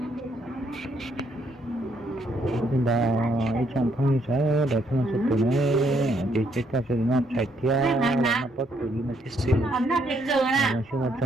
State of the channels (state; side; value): normal; both; correlation 0.71